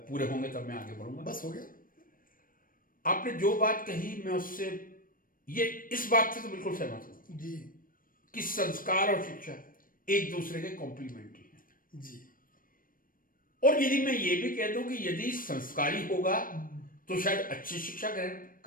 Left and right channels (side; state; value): right; late; 0.41 ms